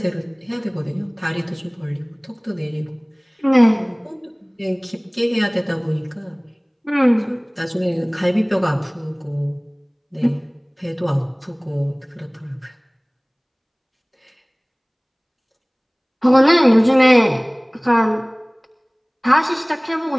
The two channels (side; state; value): both; identical; correlation 1.00